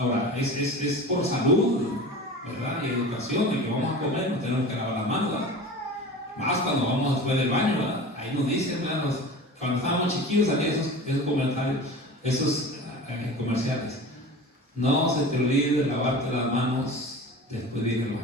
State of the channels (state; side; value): normal; both; correlation 0.34